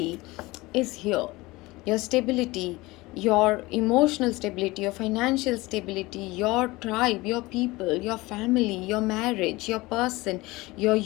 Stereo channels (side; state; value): right; quieter; 21.1 dB